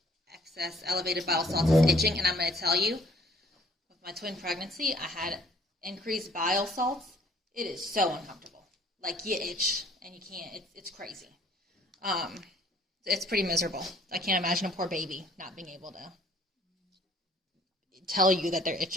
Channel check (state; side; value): normal; both; correlation 0.59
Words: excess elevated bile salts is itching. And I'm going to tell you, with my twin pregnancy, I had increased bile salts. It is so uncomfortable. Like, you itch and you can't. It's crazy. It's pretty miserable. I can't imagine a poor baby not being able to tell you that they're